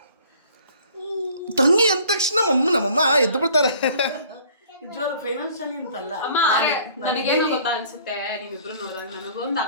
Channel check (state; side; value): inverted; both; correlation -0.54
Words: ತಂಗಿ ಅಂದ ತಕ್ಷಣ ನಮ್ಮಮ್ಮ ಎದ್ದು ಬಿಡ್ತಾರೆ. ನಿಜವಾಗ್ಲೂ ಫೈನಾನ್ಷಿಯಲಿ ಅಂತಲ್ಲ. ಅಮ್ಮ ನನಗೇನು ಗೊತ್ತಾ ಅನ್ಸುತ್ತೆ, ನೀವಿಬ್ರು ನೋಡಿದಾಗ ನನಗೊಂದು